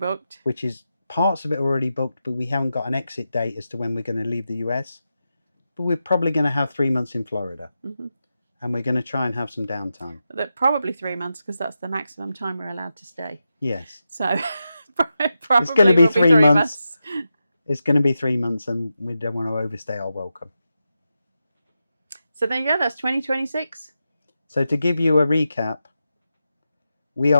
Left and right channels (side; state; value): both; inverted; correlation -0.89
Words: Which is parts of it already booked, but we haven't got an exit date as to when we're going to leave the US. but we're probably going to have 3 months in Florida. Mm-hmm. And we're going to try and have some downtime. Probably 3 months, because that's the maximum time we're allowed to stay. Yes. So probably It's going to be will 3 months. It's going to be 3 months, and we don't want to overstay our welcome. So there you go. That's 2026. So to give you a recap, we